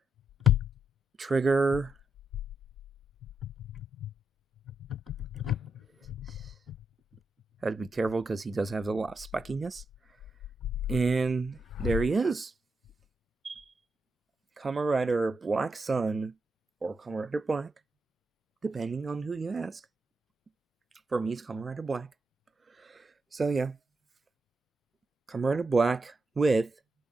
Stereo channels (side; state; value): both; normal; correlation 0.83